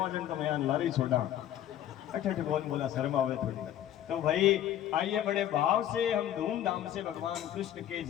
जन तो मैं लारी छोड़ा, अठ कौन बोला, शर्म आवे थोड़ी। तो भाई आइए बड़े भाव से हम धूमधाम से भगवान कृष्ण के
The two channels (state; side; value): quieter; right; 11.5 dB